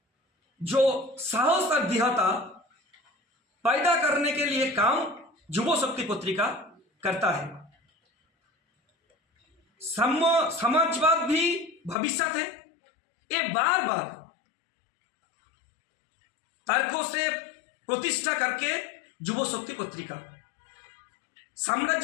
जो साहस और दृढ़ता पैदा करने के लिए काम युवा शक्ति पत्रिका करता है। समाजवाद भी भविष्य है। ये बार बार तर्कों से प्रतिष्ठा करके युवा शक्ति पत्रिका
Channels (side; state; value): right; drops out; at 12.0 s